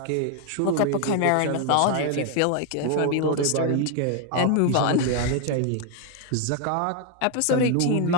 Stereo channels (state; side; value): different; both; correlation 0.01